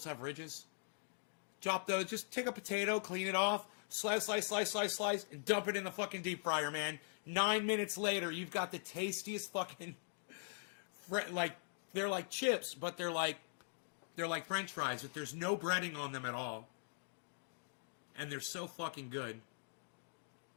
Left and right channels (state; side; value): silent; right; digital silence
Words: have ridges. Chop those. Just take a potato, clean it off, slice, and dump it in the fucking deep fryer, man. 9 minutes later, you've got the tastiest fucking, like, they're like chips, but they're like French fries, but there's no breading on them at all. And they're so fucking good.